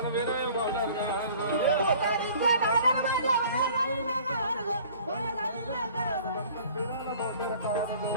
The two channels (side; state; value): both; inverted; correlation -0.50